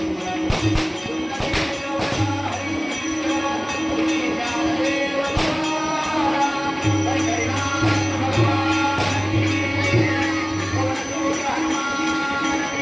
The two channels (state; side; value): identical; both; correlation 1.00